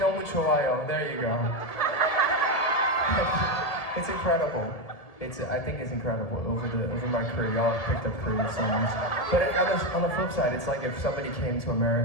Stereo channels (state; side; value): late; right; 1.7 ms